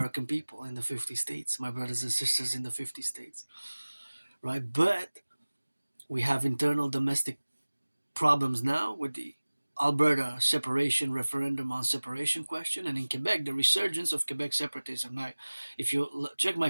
people in the 50 states, my brothers and sisters in the 50 states, right? But we have internal domestic problems now with the Alberta separation referendum on separation question, and in Quebec, the resurgence of Quebec separatism. Now, if you check my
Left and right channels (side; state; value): both; inverted; correlation -1.00